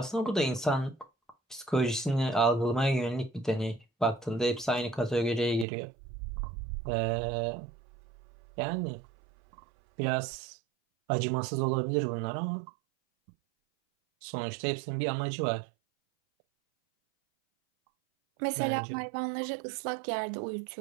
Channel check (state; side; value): drops out; left; at 5.7 s